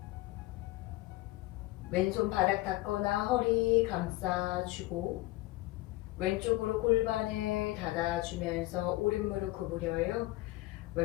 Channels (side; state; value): right; quieter; 18.5 dB